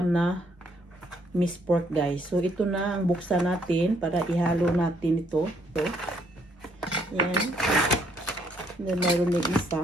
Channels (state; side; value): normal; both; correlation 0.69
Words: na minced pork guys. So ito na ang buksan natin para ihalo natin ito. So, yan. Then mayroon na